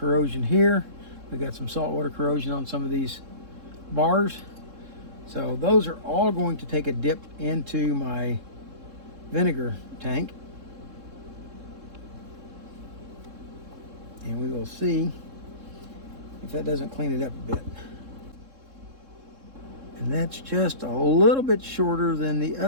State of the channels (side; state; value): left; late; 3.7 ms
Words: here. We got some saltwater corrosion on some of these bars. So those are all going to take a dip into my vinegar tank. And we will see if that doesn't clean it up a bit. And that's just a little bit shorter than the